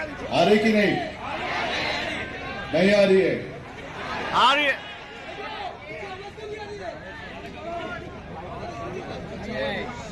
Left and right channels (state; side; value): identical; both; correlation 1.00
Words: आ रही की नहीं? नहीं आ रही है? आ रही है।